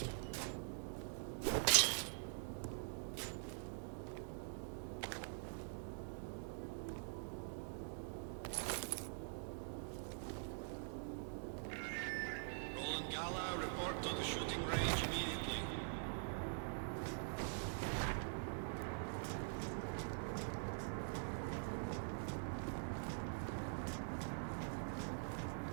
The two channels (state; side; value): silent; left; digital silence